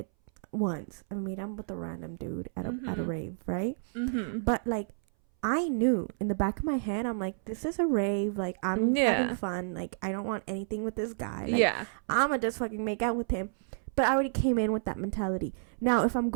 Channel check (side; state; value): left; silent; 58 dB below the other